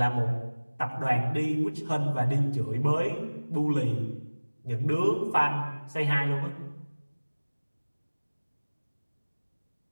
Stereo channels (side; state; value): both; inverted; correlation -1.00